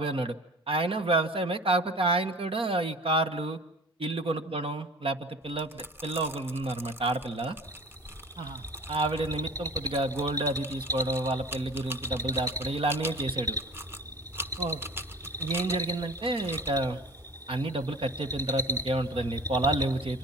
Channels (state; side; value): normal; both; correlation 0.41